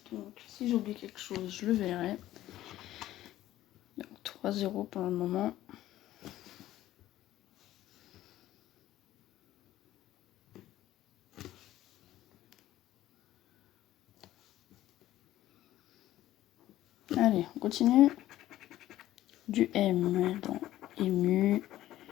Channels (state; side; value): quieter; right; 14.3 dB